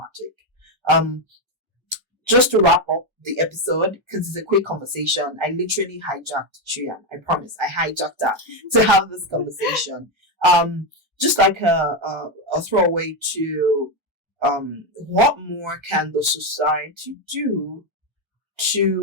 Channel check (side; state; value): both; normal; correlation 0.08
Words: Just to wrap up the episode, because it's a quick conversation, I literally hijacked Shuyang. I promise, I hijacked her to have this conversation. Just like a throwaway to what more can the society do